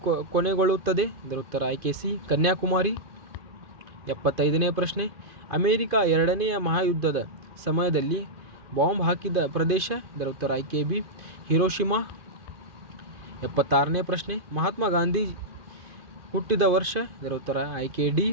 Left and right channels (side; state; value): left; late; 2.5 ms